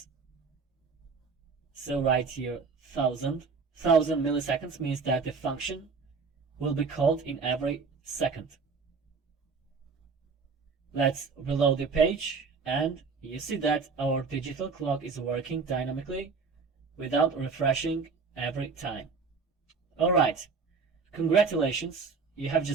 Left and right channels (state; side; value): quieter; left; 4.9 dB